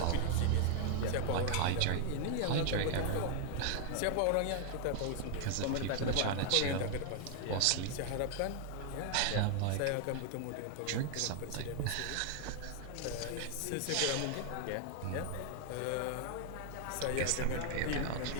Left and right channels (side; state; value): both; different; correlation 0.00